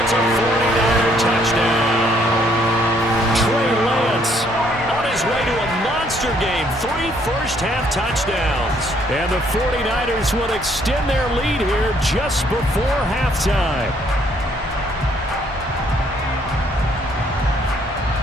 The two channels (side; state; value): both; normal; correlation 0.66